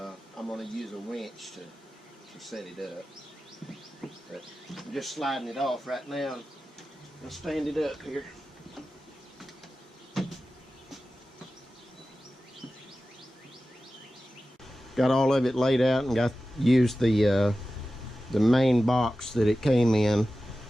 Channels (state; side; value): normal; both; correlation 0.94